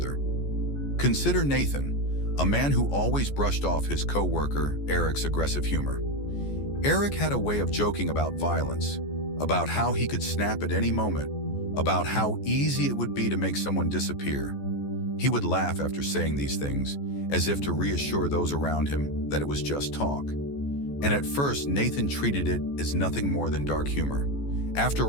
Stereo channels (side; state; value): right; late; 14 ms